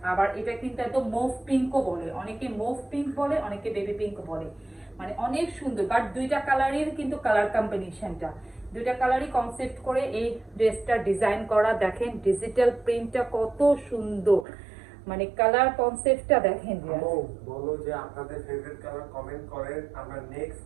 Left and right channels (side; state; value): left; drops out; at 14.5 s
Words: আবার এটা কিন্তু একদম মুভ পিঙ্কও বলে, অনেকে মুভ পিঙ্ক বলে, অনেকে বেবি পিঙ্ক বলে, মানে অনেক সুন্দর। বাট দুইটা কালারের কিন্তু কালার কম্বিনেশনটা, দুইটা কালারই কনসেপ্ট করে এই ড্রেসটা ডিজাইন করা, দেখেন ডিজিটাল প্রিন্টটা কত সুন্দর, মানে কালার কনসেপ্টটা দেখেন। বলো যে আপনাদের ফেভারিট কালার কমেন্ট করেন, আমরা